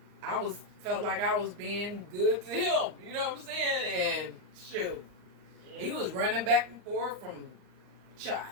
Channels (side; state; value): left; late; 39 ms